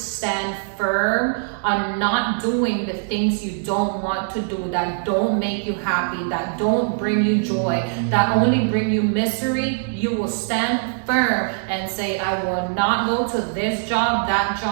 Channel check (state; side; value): silent; left; digital silence